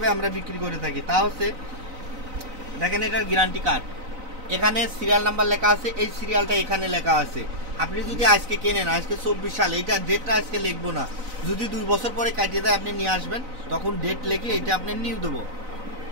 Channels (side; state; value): left; late; 4.0 ms